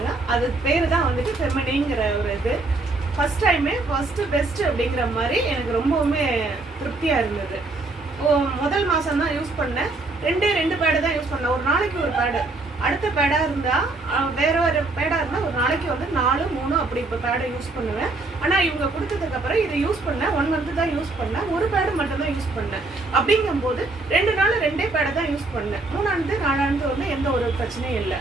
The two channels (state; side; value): quieter; left; 3.3 dB